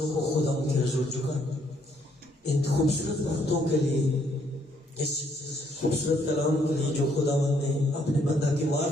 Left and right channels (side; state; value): both; normal; correlation 0.69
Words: کو خدا کے حضور جھکائیں ان خوبصورت باتوں کے لیے، اس خوبصورت کلام کے لیے جو خداوند نے اپنے بندہ کی